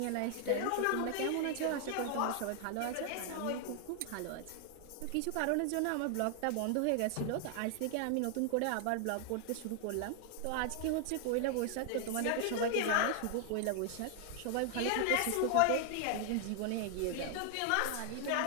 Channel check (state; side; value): different; both; correlation 0.00